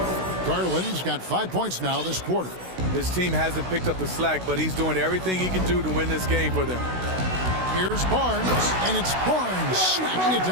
Garland's got 5 points now this quarter. This team hasn't picked up the slack, but he's doing everything he can do to win this game for them. Here's Barnes, and it's Barnes smacking it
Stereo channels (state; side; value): late; left; 16 ms